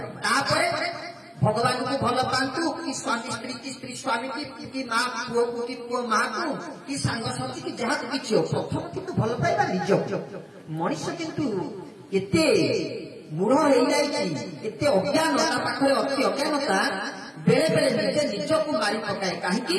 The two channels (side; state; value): both; identical; correlation 1.00